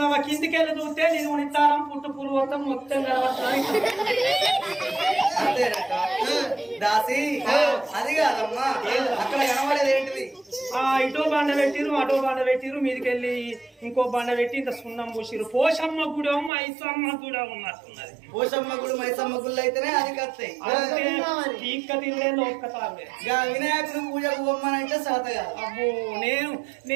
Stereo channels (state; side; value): drops out; left; at 16.5 s